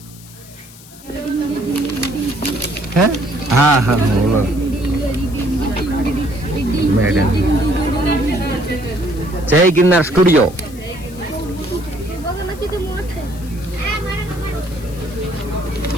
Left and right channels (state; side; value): noise; left; hiss, 20 dB below the sound